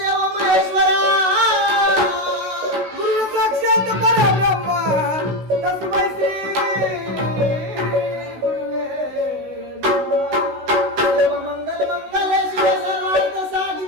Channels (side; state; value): left; late; 16 ms